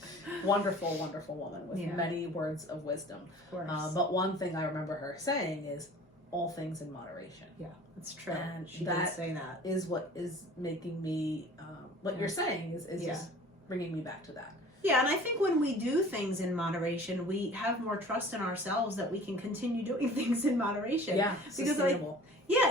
Wonderful, wonderful woman with many words of wisdom. Of course. But one thing I remember her saying is, all things in moderation. Yeah, that's true. And she did say that. Is what is making me, what you're saying is just bringing me back to that. Yeah, and I think when we do things in moderation, we have more trust in ourselves that we can continue doing things in moderation. Yeah, sustainable.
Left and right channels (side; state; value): both; normal; correlation 0.46